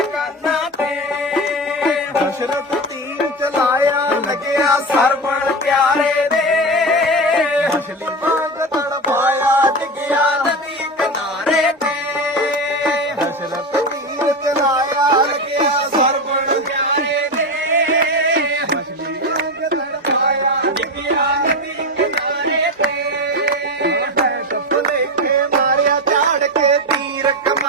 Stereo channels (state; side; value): normal; both; correlation 0.20